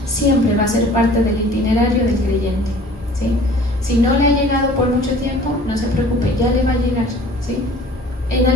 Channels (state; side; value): normal; both; correlation 0.48